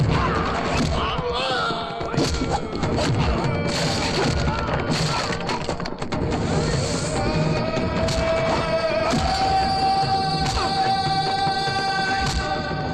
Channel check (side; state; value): both; identical; correlation 1.00